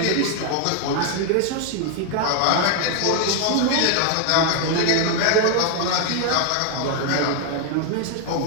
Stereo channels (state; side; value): different; both; correlation 0.00